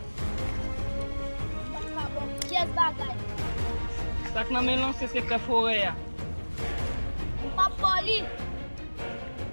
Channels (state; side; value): inverted; both; correlation -1.00